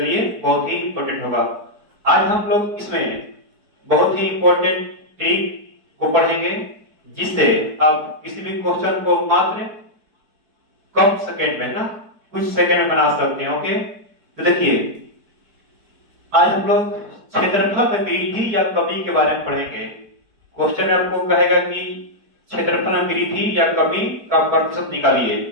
लिए बहुत ही इंपॉर्टेंट होगा। आज हम लोग इसमें बहुत ही इंपॉर्टेंट ट्रिक को पढ़ेंगे, जिससे आप किसी भी क्वेश्चन को मात्र कम सेकेंड में ना कुछ सेकेंड में बना सकते हैं। ओके, तो देखिए आज हम लोग क्षेत्रफल में वृद्धि या कमी के बारे में पढ़ेंगे। क्वेश्चन आपको कहेगा कि क्षेत्रफल में वृद्धि या कमी का प्रतिशत निकालिए।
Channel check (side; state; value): left; late; 4.7 ms